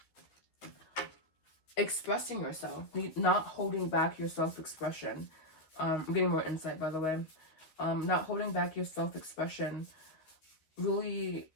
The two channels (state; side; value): late; right; 13 ms